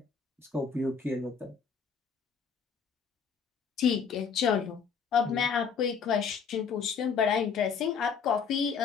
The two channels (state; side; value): quieter; right; 6.3 dB